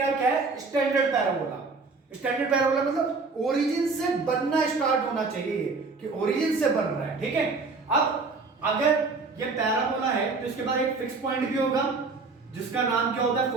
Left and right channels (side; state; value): left; quieter; 4.1 dB